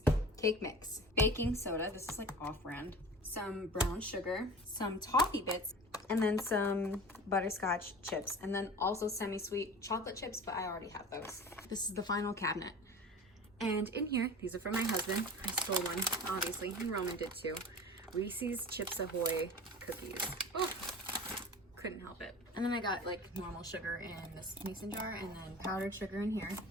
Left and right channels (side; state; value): both; normal; correlation 0.37